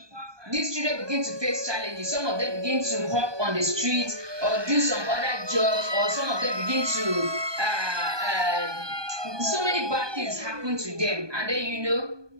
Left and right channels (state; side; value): late; left; 1.2 ms